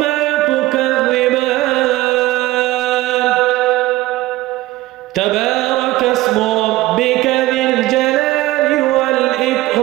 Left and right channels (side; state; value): left; quieter; 17.3 dB